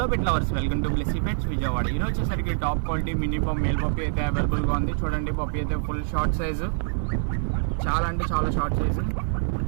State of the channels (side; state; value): left; silent; 59 dB below the other